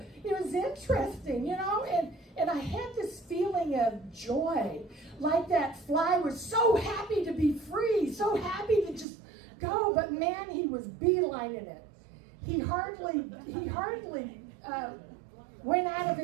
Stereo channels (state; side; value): drops out; left; at 9.1 s